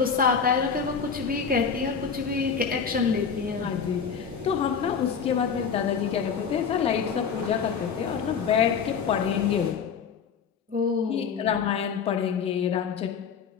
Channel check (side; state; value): right; quieter; 6.5 dB